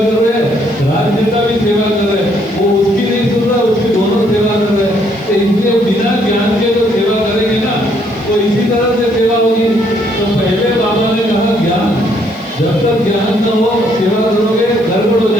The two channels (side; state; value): left; noise; hiss, 29 dB below the sound